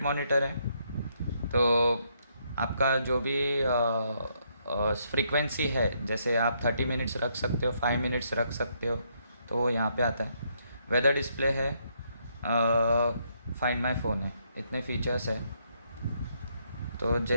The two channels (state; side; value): inverted; both; correlation -0.73